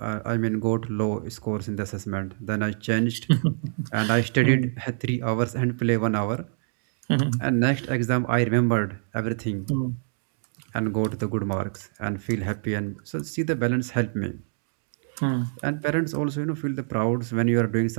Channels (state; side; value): silent; left; digital silence